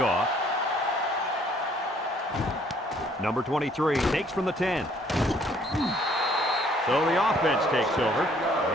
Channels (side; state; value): both; normal; correlation 0.62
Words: Number 23 takes from the 10. So the offense takes over,